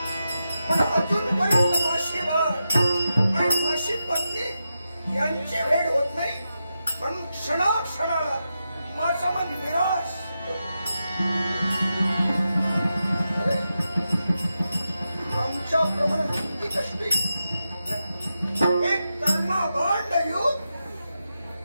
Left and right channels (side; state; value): both; inverted; correlation -0.88